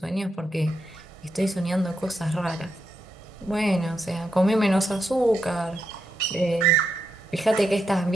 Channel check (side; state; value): both; normal; correlation 0.83